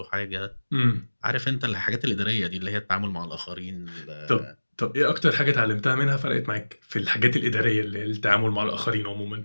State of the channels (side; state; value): both; inverted; correlation -1.00